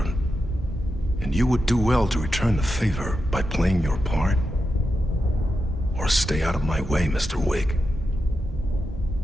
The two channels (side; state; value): both; normal; correlation 0.88